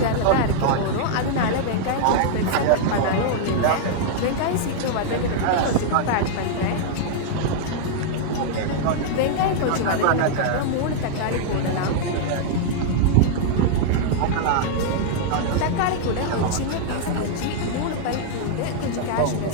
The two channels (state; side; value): different; both; correlation -0.01